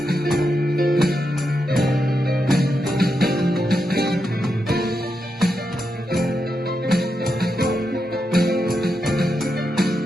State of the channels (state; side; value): normal; both; correlation 0.85